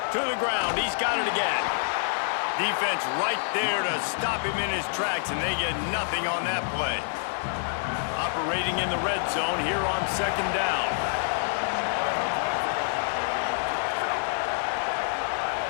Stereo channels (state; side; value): silent; right; digital silence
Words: To the ground, he's got it again. Defense right there to stop him in his tracks, and they get nothing on that play. Operating in the red zone here on 2nd down.